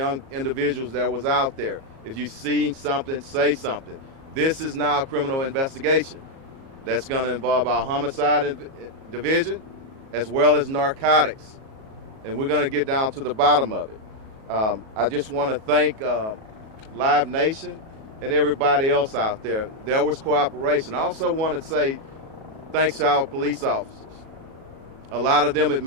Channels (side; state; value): left; late; 37 ms